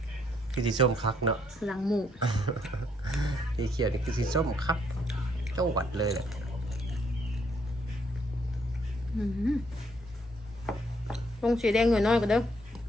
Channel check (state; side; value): normal; both; correlation 0.70